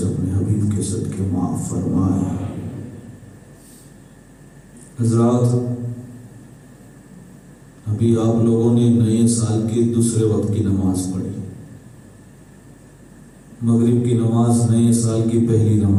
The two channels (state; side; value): identical; both; correlation 1.00